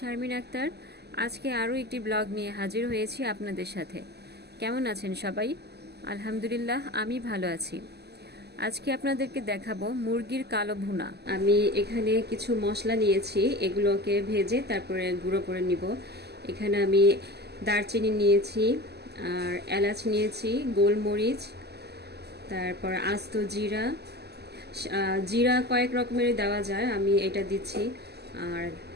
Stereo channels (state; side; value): late; left; 0.48 ms